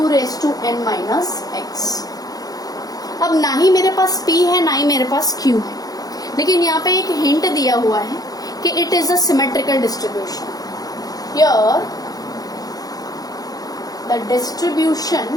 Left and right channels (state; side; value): late; right; 0.18 ms